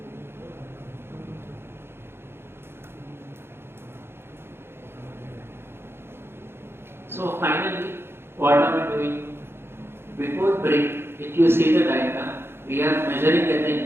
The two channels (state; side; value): late; left; 0.11 ms